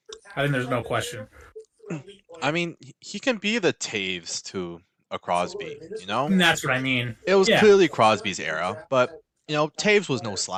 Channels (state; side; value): identical; both; correlation 1.00